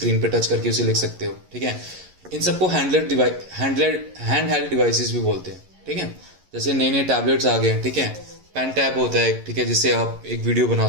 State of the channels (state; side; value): late; left; 11 ms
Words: पे टच करके उसे लिख सकते हो, ठीक है। इन सबको हैंड हेल्ड डिवाइसेस भी बोलते हैं, ठीक है। जैसे नए नए टैबलेट्स आ गए हैं, ठीक है, पेन टैब होता है, ठीक है, जिससे आप एक वीडियो बना